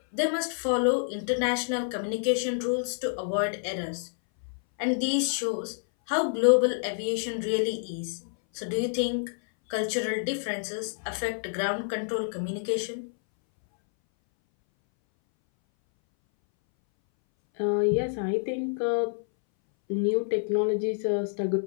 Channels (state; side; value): silent; right; 59 dB below the other